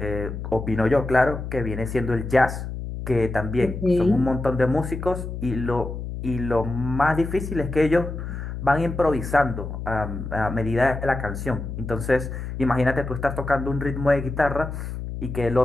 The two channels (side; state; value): left; noise; hum, 7 dB below the sound